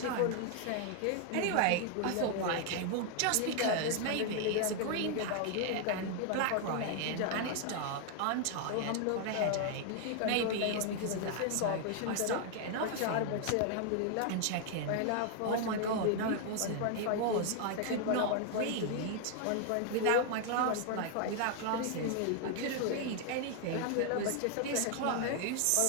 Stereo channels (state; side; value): different; both; correlation 0.00